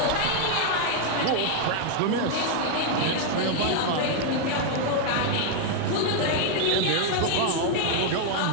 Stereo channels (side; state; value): both; different; correlation 0.00